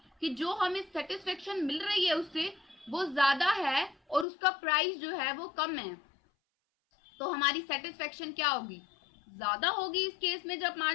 कि जो हमें सेटिस्फेक्शन मिल रही है उससे वो ज्यादा है और उसका प्राइस जो है वो कम है, तो हमारी सेटिस्फेक्शन क्या होगी, ज्यादा होगी। इस केस में जब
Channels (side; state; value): right; drops out; at 4.2 s